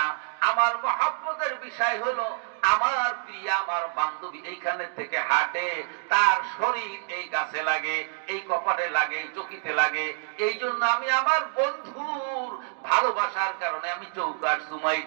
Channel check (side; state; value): left; silent; digital silence